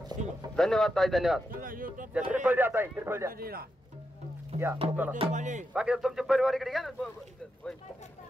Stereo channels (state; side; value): normal; both; correlation 0.86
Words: धन्यवाद ताई. धन्यवाद. श्रीफळ द्या ताई. श्रीफळ द्या. या चला बाकी तुमचे परिवार इकडे घ्या ना